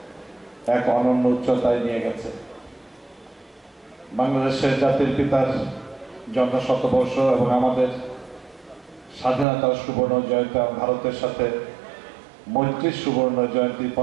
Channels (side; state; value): left; drops out; at 9.5 s